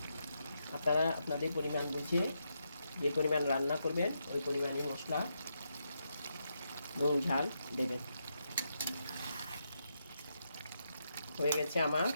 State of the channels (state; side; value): inverted; both; correlation -0.82